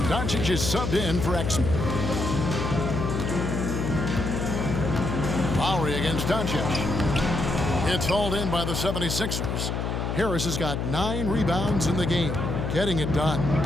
Doncic is subbed in for Exum. Lowry against Doncic. It's hauled in by the 76ers. Harris has got 9 rebounds in the game, getting it done.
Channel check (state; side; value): noise; left; hum, 2 dB below the sound